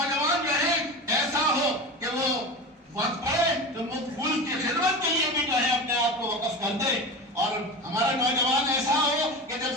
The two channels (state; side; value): normal; both; correlation 0.28